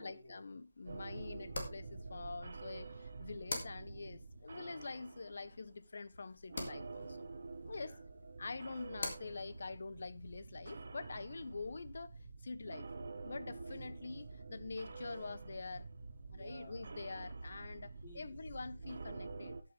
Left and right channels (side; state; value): both; inverted; correlation -0.91